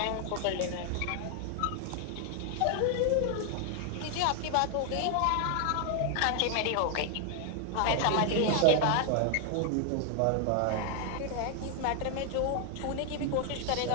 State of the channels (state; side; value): different; both; correlation 0.00